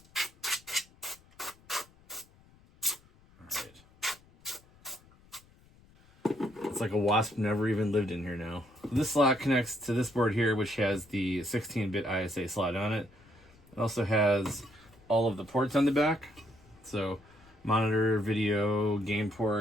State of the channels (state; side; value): noise; left; rumble, 28 dB below the sound